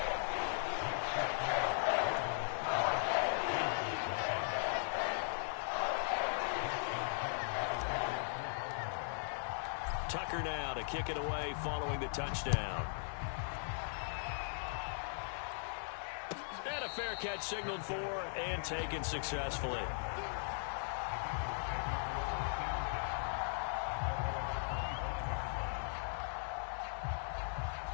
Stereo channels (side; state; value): right; silent; digital silence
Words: Tucker now to kick it away following the touchdown. And a fair catch signaled for and taken successfully.